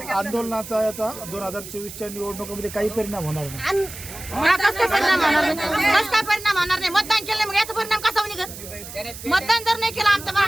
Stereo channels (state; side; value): noise; right; hiss, 13 dB below the sound